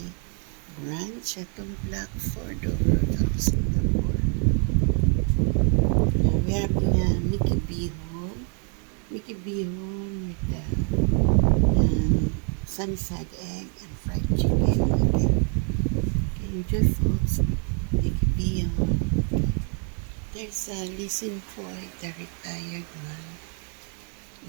branch at Blackford over of Singapore. We have Mickey Bihon with sunny side egg and fried chicken. Okay, enjoy folks. Mickey Bihon. There's Listen Boy, the retired one.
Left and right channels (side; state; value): left; quieter; 38.2 dB